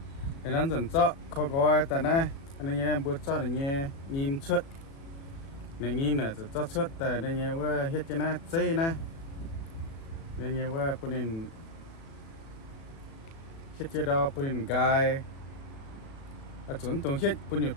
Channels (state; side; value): late; right; 36 ms